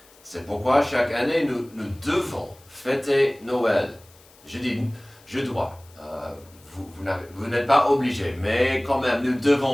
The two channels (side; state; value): left; noise; hiss, 27 dB below the sound